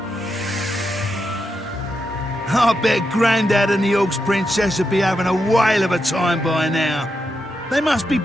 I bet Grandad and the Orcs Princess would be having a whale of a time by now. They must be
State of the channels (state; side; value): normal; both; correlation 0.85